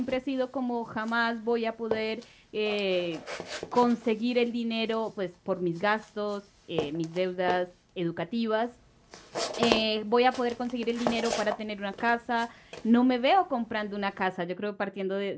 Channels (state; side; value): identical; both; correlation 1.00